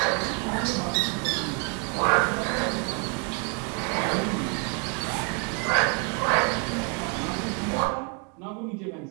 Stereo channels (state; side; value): quieter; left; 35.2 dB